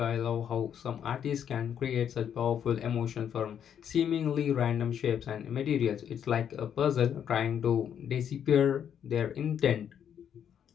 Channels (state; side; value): quieter; right; 8.8 dB